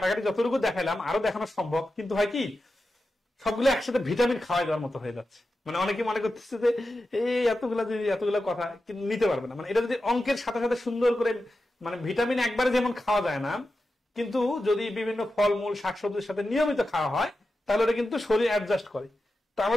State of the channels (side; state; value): both; normal; correlation 0.91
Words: যতটুকু দেখাইলাম আরো দেখানো সম্ভব, কিন্তু হয় কি সবগুলো একসাথে ভিটামিন খাওয়াই দেওয়ার মতো হয়ে যাচ্ছে। মানে অনেকে মনে করতেছে যে এই এতগুলা কথা কিন্তু নিতে পারবে না। মানে এটা যদি অঙ্কের সাথে সাথে সুন্দর করে মানে ভিটামিন একবারে যেমন খাওয়া যায় না, কিন্তু যদি বিভিন্ন ফলমূল শাকসবজির সাথে নিয়মিত খাওয়া হয় তাহলে ওটা কিন্তু শরীর অ্যাডজাস্ট করে। তো